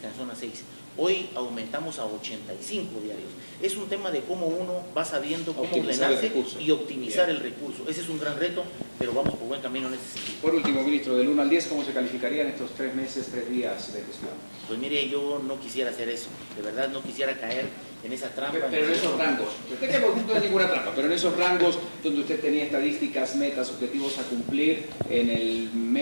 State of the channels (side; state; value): both; inverted; correlation -1.00